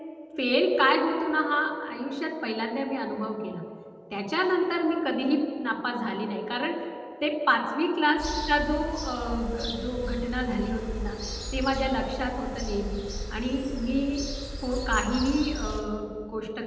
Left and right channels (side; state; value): both; identical; correlation 1.00